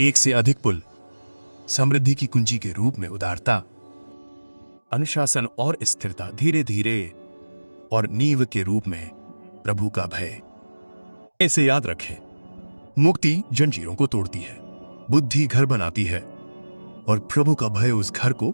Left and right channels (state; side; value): inverted; both; correlation -1.00